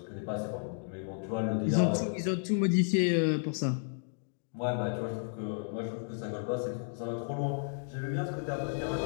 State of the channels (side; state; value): right; silent; digital silence